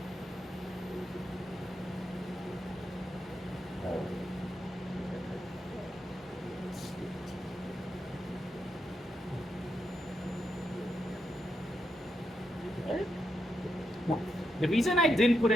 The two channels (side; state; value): both; normal; correlation 0.83